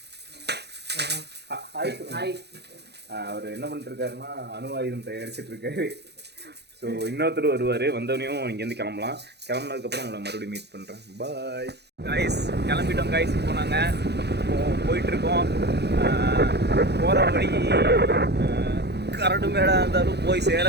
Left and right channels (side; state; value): left; late; 0.48 ms